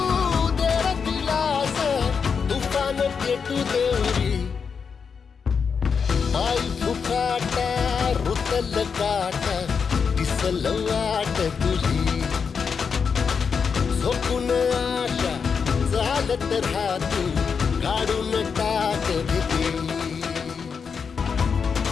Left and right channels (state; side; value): quieter; right; 6.0 dB